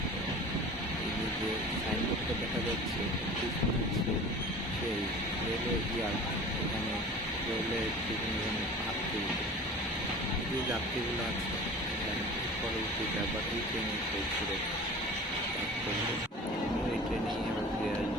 এই যে সাইনবোর্ডটা দেখা যাচ্ছে, পিছনে হচ্ছে সেই রেলওয়ে ইয়ার্ড। এখানে রেলের বিভিন্ন ধরনের যাত্রী, যে যাত্রীগুলো আছে পরবর্তীতে আবার এই ট্রেনে ঘুরে এই ট্রেনেই আবার ফিরে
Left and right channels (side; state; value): both; normal; correlation 0.40